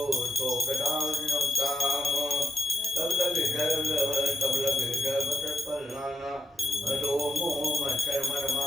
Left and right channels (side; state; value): both; normal; correlation 0.81